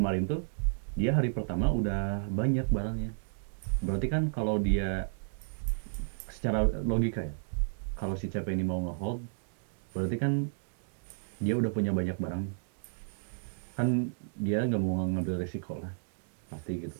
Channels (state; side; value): silent; left; digital silence